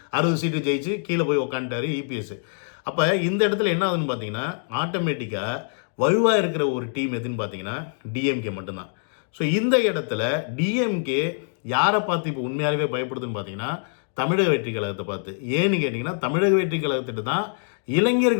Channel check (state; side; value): silent; right; 60 dB below the other